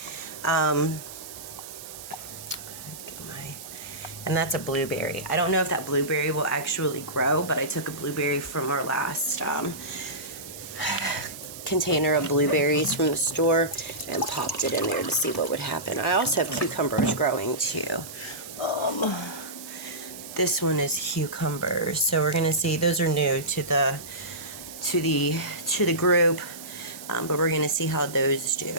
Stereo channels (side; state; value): right; noise; hiss, 13 dB below the sound